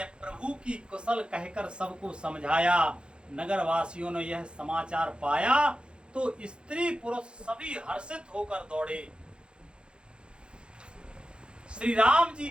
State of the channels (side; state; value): left; late; 0.053 ms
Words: प्रभु की कुशल कहकर सबको समझाया। नगर वासियों ने यह समाचार पाया तो स्त्री पुरुष सभी हर्षित होकर दौड़े। श्री राम जी